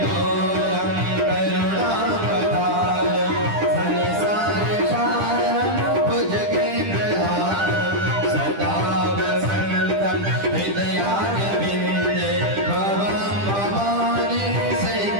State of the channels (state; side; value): late; left; 10 ms